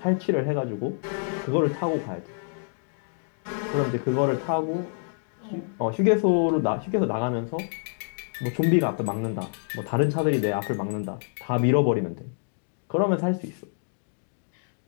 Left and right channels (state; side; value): silent; right; digital silence